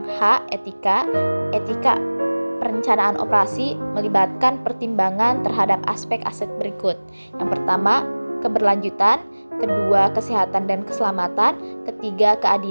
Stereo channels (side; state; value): both; inverted; correlation -1.00